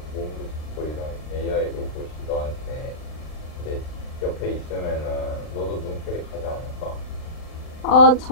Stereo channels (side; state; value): right; late; 39 ms